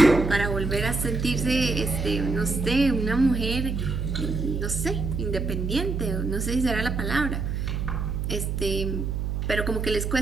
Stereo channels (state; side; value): noise; right; hum, 2 dB below the sound